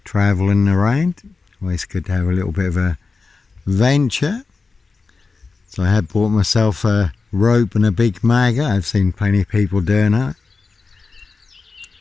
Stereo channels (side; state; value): right; quieter; 4.3 dB